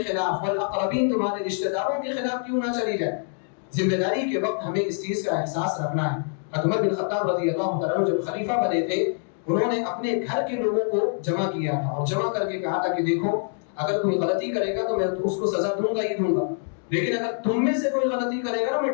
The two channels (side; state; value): right; silent; 62 dB below the other